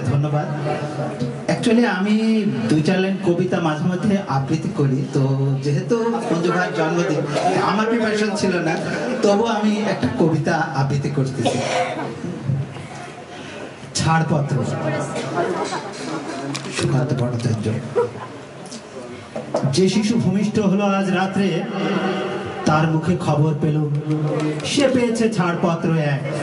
ধন্যবাদ एक्चुअली আমি দুই চার লাইন কবিতা মাঝে মধ্যে আবৃত্তি করি তো যেহেতু মঞ্জু ভাইয়ের জন্মদিন আমার প্রিপারেশন ছিল না তবু আমি একটা কবিতা আবৃত্তি করতেছি ছাড়পত্র সুকান্ত ভট্টাচার্য যে শিশু ভূমিষ্ঠ হলো আজ রাত্রে তার মুখে খবর পেল সে পেয়েছে ছাড়পত্র এক।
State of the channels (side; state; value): both; identical; correlation 1.00